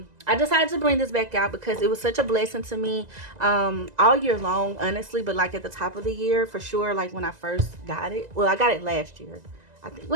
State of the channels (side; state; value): left; late; 2.0 ms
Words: decided to bring this back out because it was such a blessing to me all year long, honestly, but like at the top of the year for sure. Like when I first got it, well, I got it last year. I think,